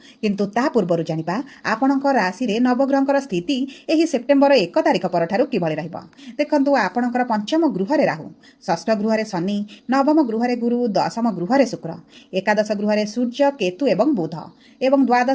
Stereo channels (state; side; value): identical; both; correlation 1.00